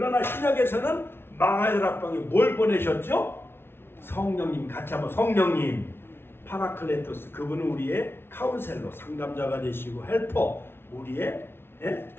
신약에서는 마가다락방에 뭘 보내셨죠? 성령님. 같이 한번 성령님. 파라클레토스, 그분은 우리의 카운셀러, 상담자가 되시고, 헬퍼, 우리의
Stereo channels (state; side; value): late; right; 0.11 ms